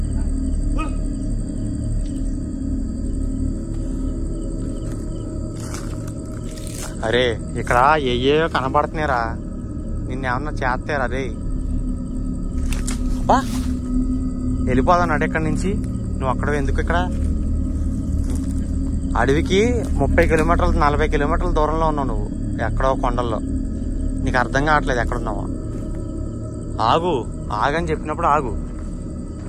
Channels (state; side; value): identical; both; correlation 1.00